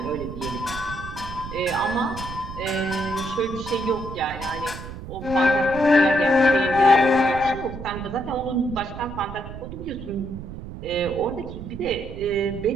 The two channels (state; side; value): noise; right; rumble, 11 dB below the sound